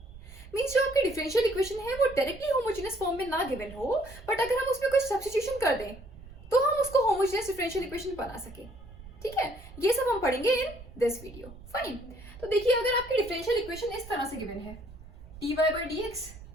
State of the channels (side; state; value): right; noise; rumble, 17 dB below the sound